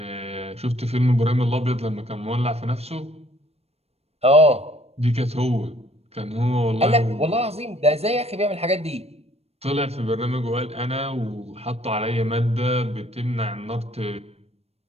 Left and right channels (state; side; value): late; left; 0.30 ms